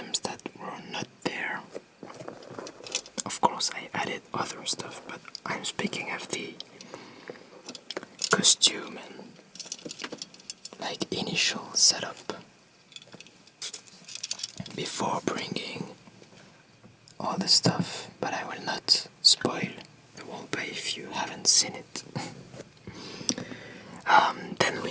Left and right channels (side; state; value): both; identical; correlation 1.00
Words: that were not there. Of course I added other stuff, but I'm speaking of the costume and like initial setup before bringing all the stuff, but I will not spoil the roleplay if you haven't seen it. Then we